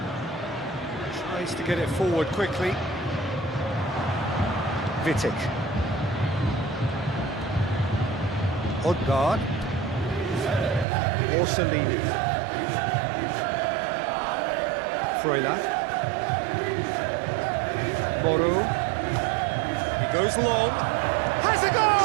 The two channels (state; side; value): drops out; left; at 10.9 s